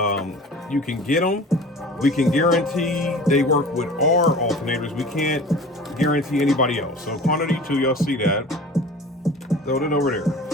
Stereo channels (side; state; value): both; normal; correlation 0.40